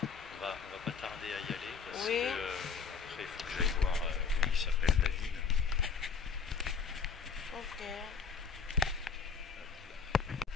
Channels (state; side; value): quieter; right; 5.9 dB